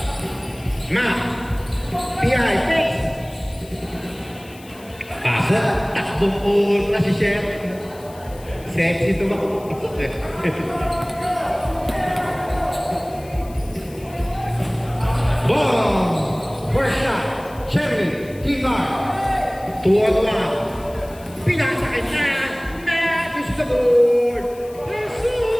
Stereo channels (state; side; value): noise; left; hiss, 23 dB below the sound